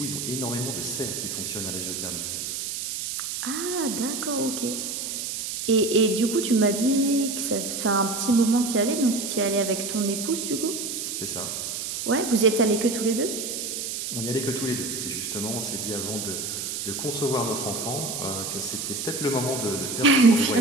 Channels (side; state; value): right; noise; hiss, 4 dB below the sound